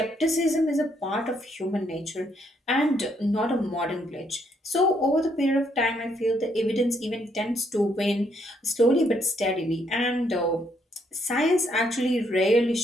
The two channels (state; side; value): normal; both; correlation 0.72